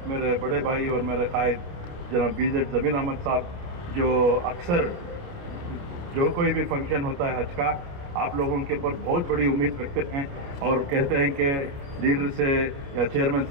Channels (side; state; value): left; late; 29 ms